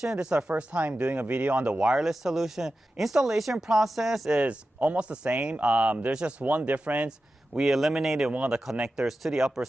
This is our first time doing a video on the wireless solution. Installation process is almost the same. There's just one difference. We eliminated one of the connectors to the upper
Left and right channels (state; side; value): normal; both; correlation 0.93